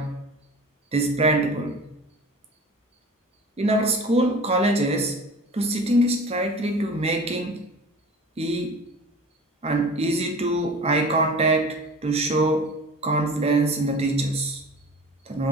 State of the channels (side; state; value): both; normal; correlation 0.39